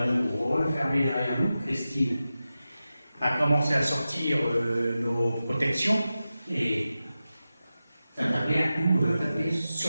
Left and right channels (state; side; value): inverted; both; correlation -0.92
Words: refermée derrière nous. Christine a commencé à sortir nos protections et ça tapait un coup